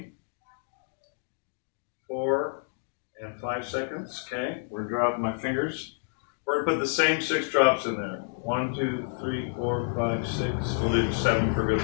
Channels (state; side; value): silent; right; digital silence